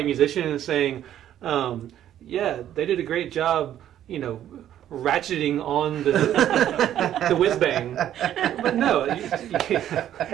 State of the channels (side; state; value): left; quieter; 11.3 dB